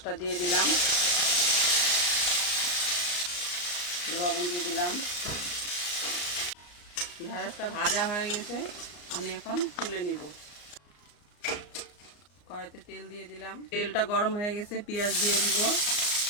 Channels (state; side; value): late; right; 34 ms